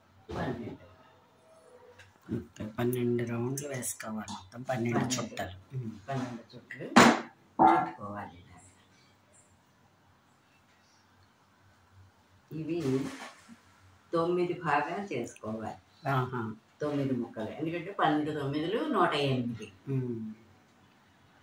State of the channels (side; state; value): both; identical; correlation 1.00